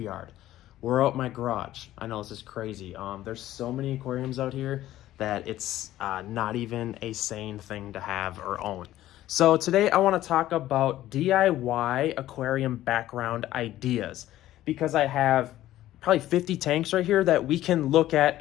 We're out my garage. I know this is crazy. There's so many aquariums out here that it's not even a sane thing to have or own. So today I want to talk about DIY aquarium background ideas because I have probably 50 tanks right here that we can look at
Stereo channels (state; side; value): quieter; right; 14.2 dB